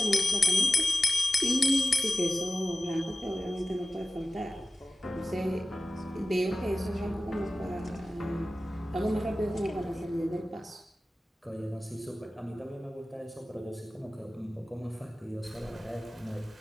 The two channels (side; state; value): both; normal; correlation 0.93